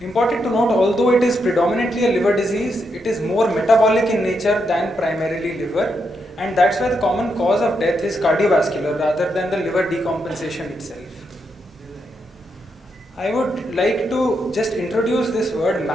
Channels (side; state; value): both; normal; correlation 0.81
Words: Important to note, although it is predominantly a liver disease, it is more metabolic in nature than primarily liver, and that's why the common cause of death is cardiovascular rather than the liver decompensation itself. I would like to just introduce this word